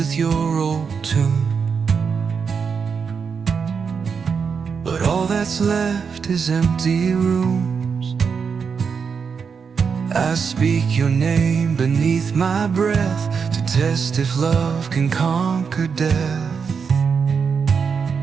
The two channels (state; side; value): quieter; left; 6.0 dB